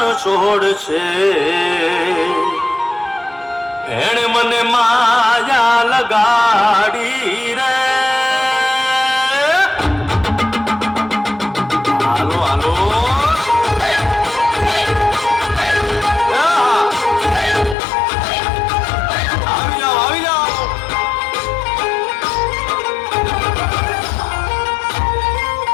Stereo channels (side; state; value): right; drops out; at 17.8 s